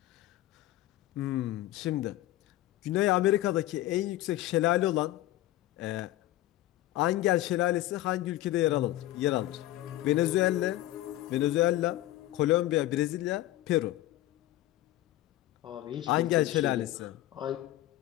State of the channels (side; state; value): right; quieter; 15.5 dB